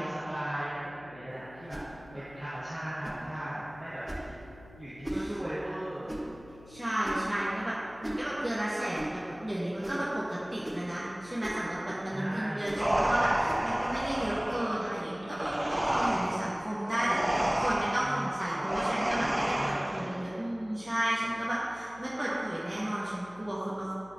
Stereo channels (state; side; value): noise; left; hum, 21 dB below the sound